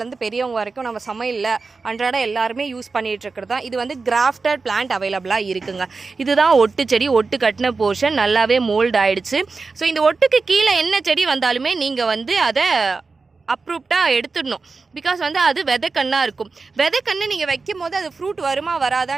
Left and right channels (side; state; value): left; quieter; 4.2 dB